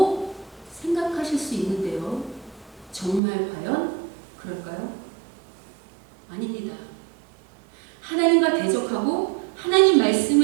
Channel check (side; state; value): left; drops out; at 3.2 s